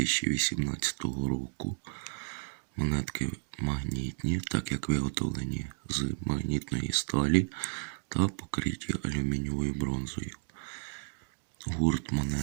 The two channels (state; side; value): silent; left; digital silence